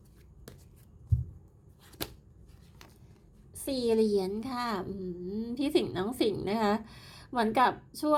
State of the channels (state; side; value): identical; both; correlation 1.00